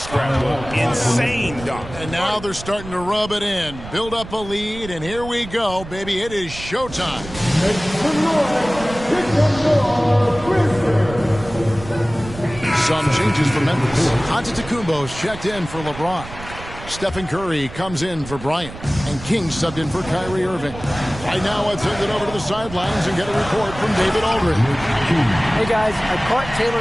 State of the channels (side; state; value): right; noise; rumble, 13 dB below the sound